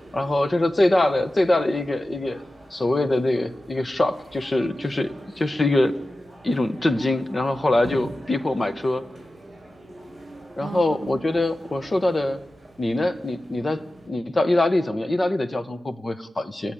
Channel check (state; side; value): normal; both; correlation 0.94